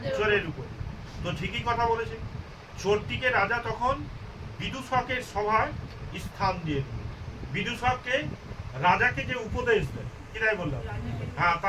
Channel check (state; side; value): identical; both; correlation 1.00